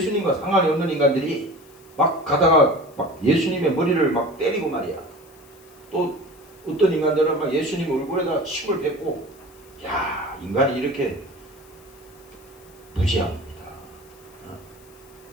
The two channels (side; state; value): left; noise; hiss, 26 dB below the sound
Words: 상관이 없는 인간들이 막 가다가 막 예수님의 머리를 막 때리고 말이야. 또 어떤 인간들은 막 예수님 얼굴에다 침을 뱉고, 야, 인간이 이렇게 무지합니다.